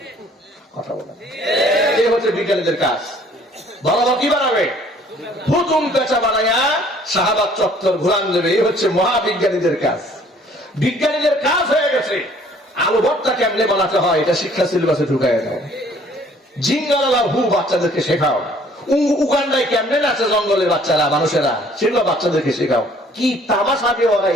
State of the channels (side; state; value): both; normal; correlation 0.57